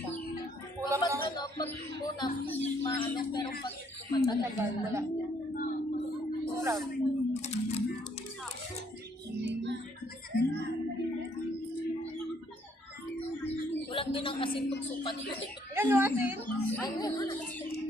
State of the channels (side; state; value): both; normal; correlation 0.67